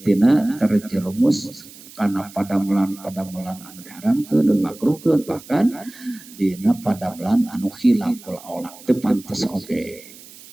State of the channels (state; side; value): noise; right; hiss, 19 dB below the sound